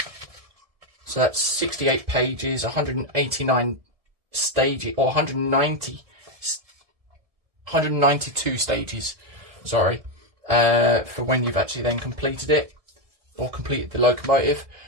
So that's 68 pages, 189 stages, or 192 stages, sorry, for when you've actually then completed it, or completed the locomotive.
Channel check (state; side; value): late; left; 1.7 ms